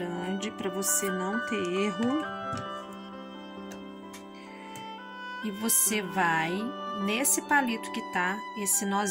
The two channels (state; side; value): identical; both; correlation 1.00